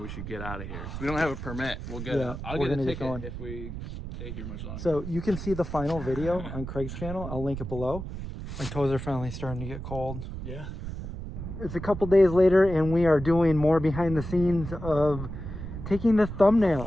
we should get out of here. We don't have a permit. We'll get Yeah, it. I'll we're get a gonna get ticket going. if we stay here much longer. So you can see the final video on Craig's channel. I'll link it below. My toes are finally starting to get cold. Yeah. It's a couple days later, and we are doing more behind the scenes of taking the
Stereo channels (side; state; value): right; noise; rumble, 8 dB below the sound